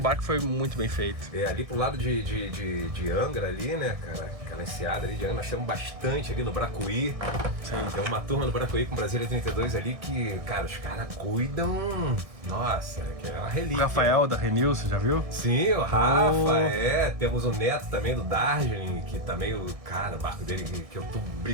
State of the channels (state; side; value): late; left; 1.6 ms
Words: que foi muito bem feito. Ali pro lado de Angra ali, né, cara? Aquela enseada ali de Angra, nós temos bastante ali no Bracuí. Sim. Tem uma turma no Bracuí com Brasília 32 ali que, cara, os caras cuidam... Nossa, que é uma relíquia. O Rafael da Renil, você já viu? Sim, o Rafa, temos o neto também do Darjeeling, que também o barco dele, que eu tô